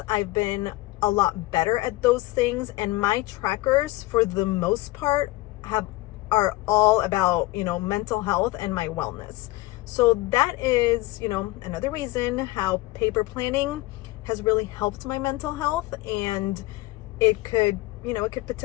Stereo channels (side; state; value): right; quieter; 19.5 dB